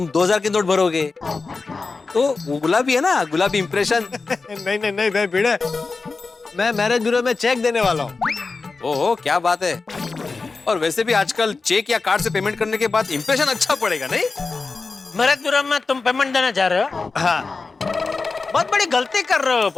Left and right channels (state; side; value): quieter; right; 4.1 dB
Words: 2000 के नोट भरोगे, तो वो गुलाबी है ना, गुलाबी इंप्रेशन। नहीं भाई भिड़े, मैं मैरिज ब्यूरो में चेक देने वाला हूँ। ओहो क्या बात है। और वैसे भी आजकल चेक या कार्ड से पेमेंट करने के बाद इंप्रेशन अच्छा पड़ेगा नहीं? मैरिज ब्यूरो में तुम पेमेंट देने जा रहे हो? हाँ। बहुत बड़ी गलती कर रहे हो